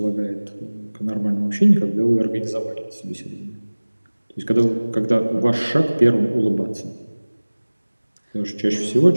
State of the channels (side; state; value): both; inverted; correlation -1.00